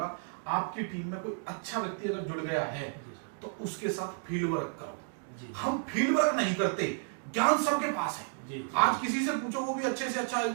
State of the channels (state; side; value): silent; left; 56 dB below the other